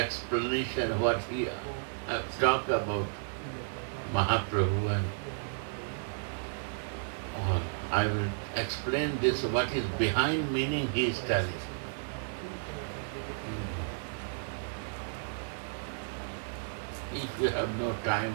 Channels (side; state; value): left; silent; digital silence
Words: what he talk about Mahaprabhu and all. I will explain this, what is behind meaning he is telling. If you have no